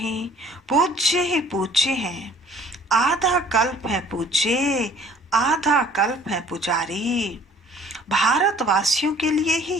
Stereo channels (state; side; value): normal; both; correlation 0.53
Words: पूज्य ही पूज्य हैं। आधा कल्प है पूज्य, आधा कल्प है पुजारी। भारतवासियों के लिए ही